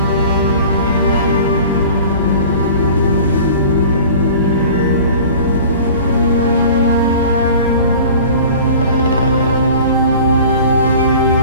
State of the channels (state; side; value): inverted; both; correlation -0.42